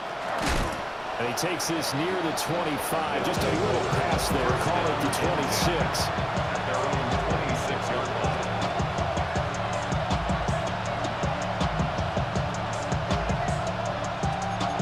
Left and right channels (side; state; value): both; identical; correlation 1.00